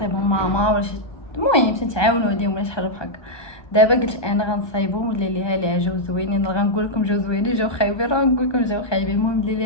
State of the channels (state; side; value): late; right; 1.2 ms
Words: ماما ولا شي، المهم تنتعاونوا عليهم ولا شي حاجه بحال هكا. دابا قلت انا غنصايبهم ولا ليها ليها جاو زوينين، غنقول لكم جاو زوينين جاو خايبين، راه نقول لكم جاو خايبين، المهم اللي